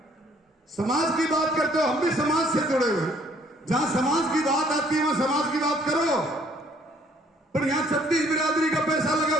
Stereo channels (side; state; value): both; normal; correlation 0.62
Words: समाज की बात करते हो, हम भी समाज से जुड़े हुए, जहां समाज की बात आती है वहां समाज की बात करो। पर यहां 36 बिरादरी का पैसा लगा